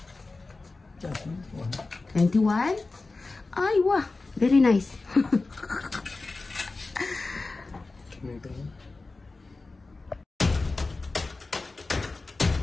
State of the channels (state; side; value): quieter; right; 3.6 dB